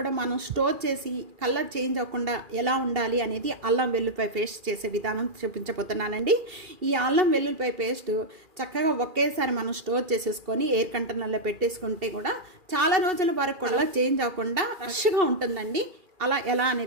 మనం స్టోర్ చేసి కలర్ చేంజ్ అవ్వకుండా ఎలా ఉండాలి అనేది అల్లం వెల్లుల్లిపాయ పేస్ట్ చేసే విధానం చూపించబోతున్నానండి. ఈ అల్లం వెల్లుల్లిపాయ పేస్ట్ చక్కగా ఒకేసారి మనం స్టోర్ చేసేసుకొని ఎయిర్ కంటైనర్లో పెట్టేసుకుంటే కూడా చాలా రోజుల వరకు కూడా చేంజ్ అవ్వకుండా ఫ్రెష్గా ఉంటుందండి. అలా ఎలా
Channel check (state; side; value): late; left; 2.4 ms